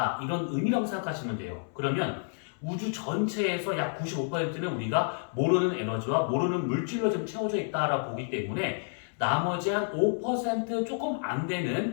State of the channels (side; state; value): right; silent; 58 dB below the other